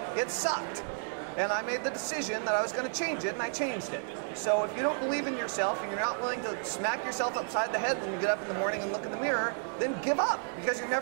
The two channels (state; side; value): silent; left; 57 dB below the other